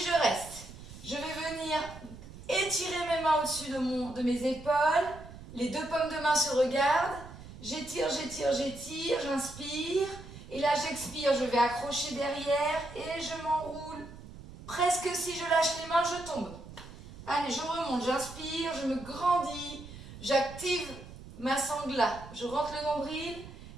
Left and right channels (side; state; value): right; noise; rumble, 15 dB below the sound